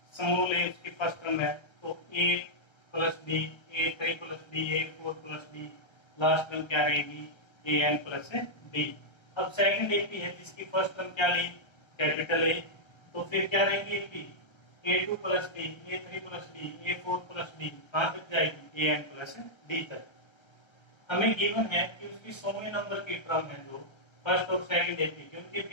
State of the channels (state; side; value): late; right; 1.3 ms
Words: समूल ए उसकी फर्स्ट टर्म है, तो ए प्लस डी, ए 3 प्लस डी, ए 4 प्लस डी, लास्ट टर्म क्या रहेगी ए एन प्लस डी। अब सेकंड एपी है जिसकी फर्स्ट टर्म क्या ली कैपिटल ए, तो फिर क्या रहेगी AP A2 plus D, A3 plus D, A4 plus D, कहां तक जाएगी AN प्लस डी तक। हमें गिवन है कि उसकी 100वें नंबर की टर्म है जो फर्स्ट और सेकंड एपी के, उनके